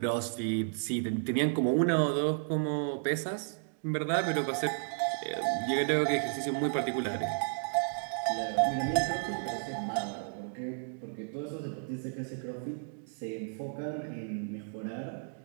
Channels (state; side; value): silent; left; digital silence